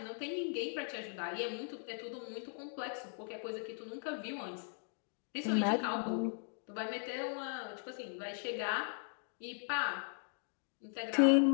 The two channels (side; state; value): right; silent; 52 dB below the other